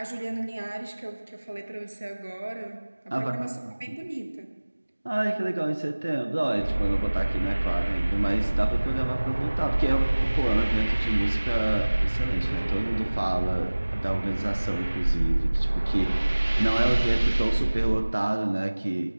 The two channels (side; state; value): both; inverted; correlation -1.00